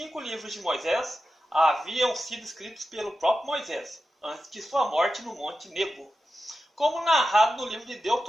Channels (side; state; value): both; normal; correlation 0.92